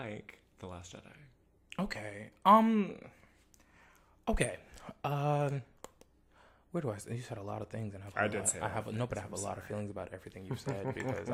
The Last Jedi. Okay. Okay. Where do I? You said a lot of things, and I have a lot of feelings about everything you said because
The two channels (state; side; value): identical; both; correlation 1.00